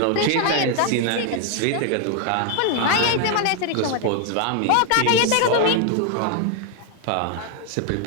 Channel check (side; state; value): both; different; correlation 0.00